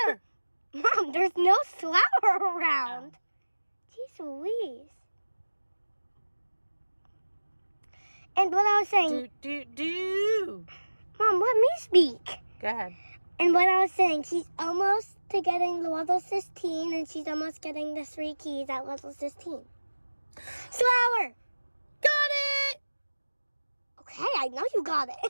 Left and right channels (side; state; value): both; inverted; correlation -1.00